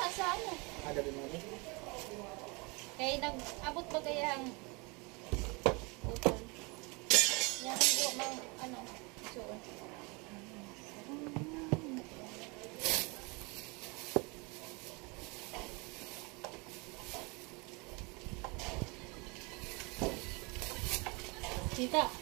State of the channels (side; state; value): left; quieter; 28.6 dB